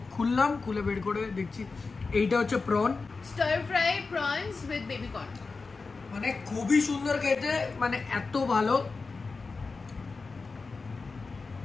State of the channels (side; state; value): right; quieter; 4.2 dB